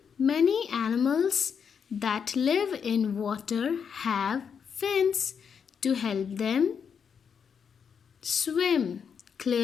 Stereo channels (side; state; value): right; quieter; 6.9 dB